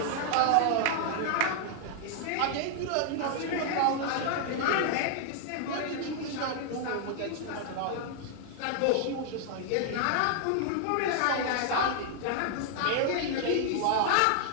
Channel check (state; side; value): different; both; correlation 0.00